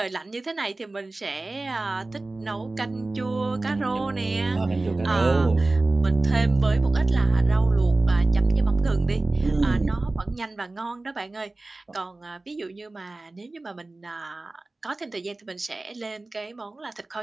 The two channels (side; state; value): left; quieter; 3.1 dB